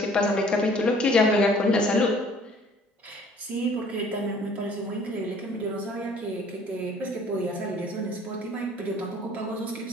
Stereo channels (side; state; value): both; normal; correlation 0.55